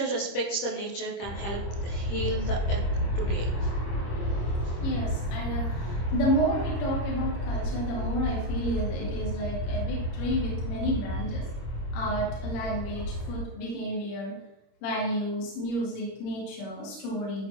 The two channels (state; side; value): late; right; 25 ms